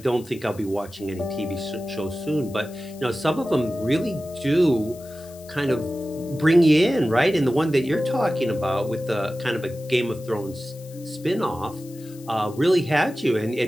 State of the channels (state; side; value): noise; left; hiss, 22 dB below the sound